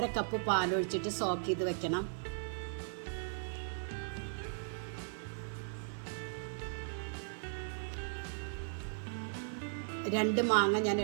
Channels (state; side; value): silent; left; 53 dB below the other